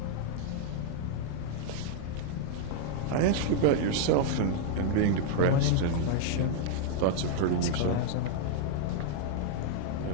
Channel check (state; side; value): different; both; correlation 0.00